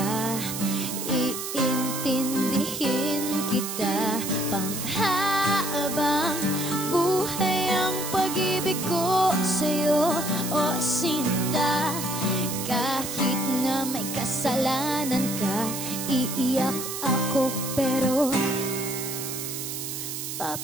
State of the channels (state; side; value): noise; right; hiss, 6 dB below the sound